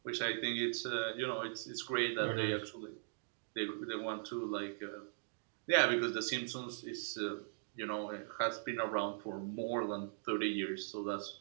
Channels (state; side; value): silent; left; digital silence